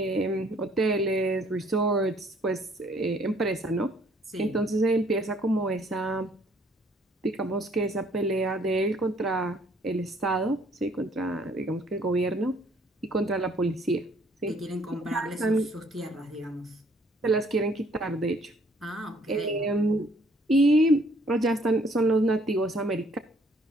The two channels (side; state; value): both; normal; correlation 0.62